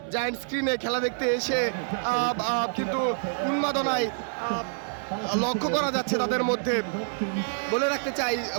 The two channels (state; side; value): silent; left; 60 dB below the other